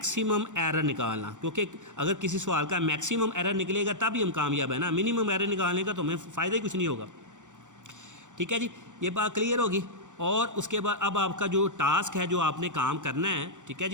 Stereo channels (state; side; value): late; left; 0.86 ms